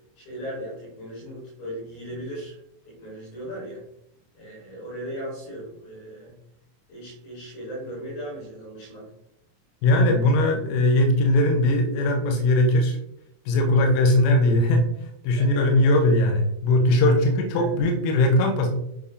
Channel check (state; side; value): late; right; 26 ms